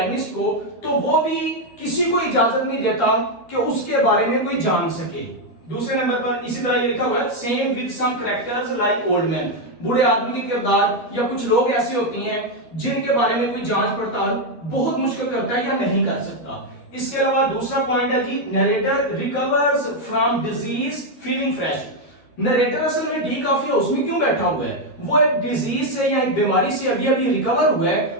को, तो वो भी किसी को इजाजत नहीं देता कि उसके बारे में कोई जान सके। दूसरे नंबर पर इसी तरह ये लिखा हुआ है same with some characters like old man, बूढ़े आदमी के किरदार या कुछ लोग ऐसे होती हैं जिनके बारे में कोई जांच पड़ताल बहुत मुश्किल करता है या नहीं कर सकता। इसके अलावा दूसरा पॉइंट है जी narrator recovers from disease feeling fresh. Narrator असल में डी कॉफी हाउस में क्यों बैठा हुआ है, वो एक डिजीज से या एक बीमारी से अभी अभी रिकवर हुआ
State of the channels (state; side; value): late; right; 12 ms